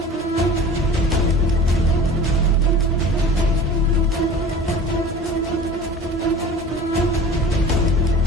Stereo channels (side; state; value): both; normal; correlation 0.40